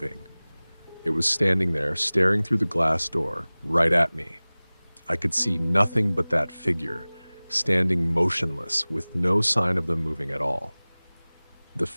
It was standing there, staring through the glass door, right at me. I could see nothing but that figure, standing motionless, with no sign of them moving at all. The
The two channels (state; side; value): inverted; both; correlation -1.00